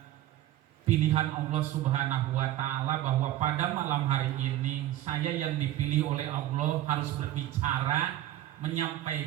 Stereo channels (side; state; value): left; quieter; 13.6 dB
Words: pilihan Allah Subhanahu wa Ta'ala bahwa pada malam hari ini saya yang dipilih oleh Allah harus berbicara,